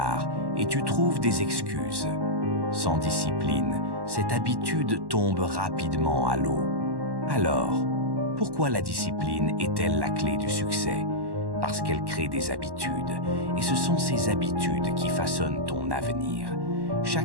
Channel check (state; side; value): late; left; 1.1 ms